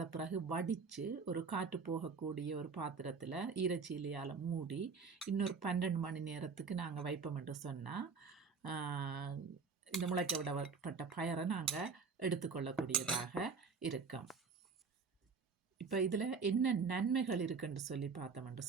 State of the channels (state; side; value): quieter; left; 5.1 dB